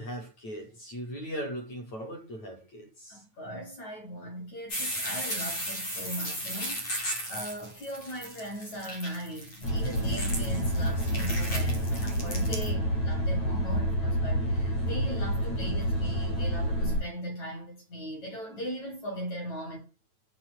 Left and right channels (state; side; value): late; right; 9.2 ms